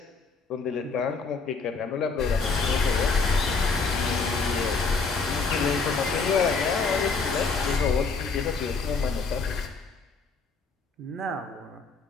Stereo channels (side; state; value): right; quieter; 4.5 dB